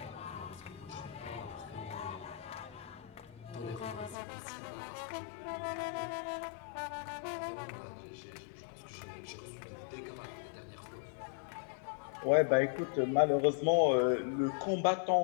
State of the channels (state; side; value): drops out; right; at 4.2 s